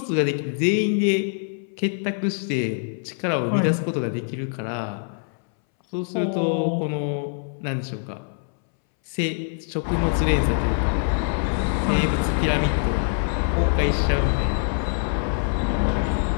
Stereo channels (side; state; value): right; silent; 63 dB below the other